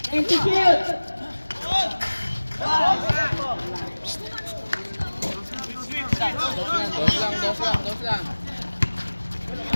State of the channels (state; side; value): inverted; both; correlation -1.00